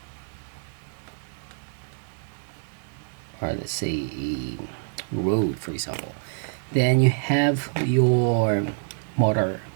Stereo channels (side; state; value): left; silent; digital silence